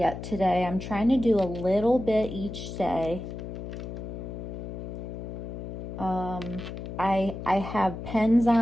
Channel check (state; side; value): noise; left; hum, 8 dB below the sound